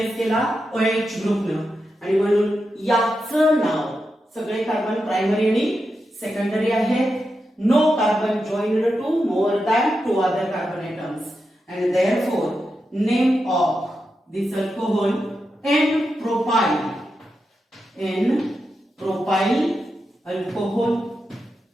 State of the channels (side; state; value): both; normal; correlation 0.88